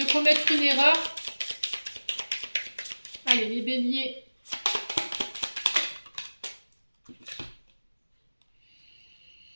commettre une erreur. Allez, les béliers.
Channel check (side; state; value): both; inverted; correlation -1.00